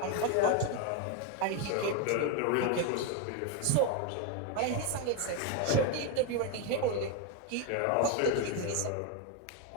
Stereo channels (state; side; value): different; both; correlation 0.02